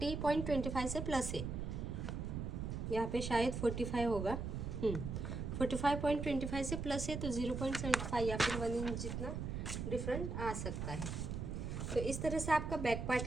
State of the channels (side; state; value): right; noise; rumble, 4 dB below the sound